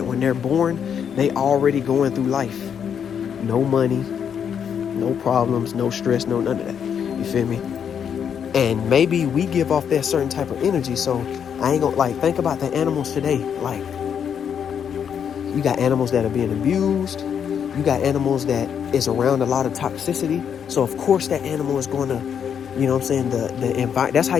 When they're born, they already going through life. No money, no problems, no stress, no none of that. You feel me? And maybe we give off that certain type of energy. So I ain't gonna think about the animals today. Like, you got animals that are being abused. You got animals that is around a lot of toxicity. So of course that animal is going to, the environment. That's how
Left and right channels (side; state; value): right; quieter; 7.9 dB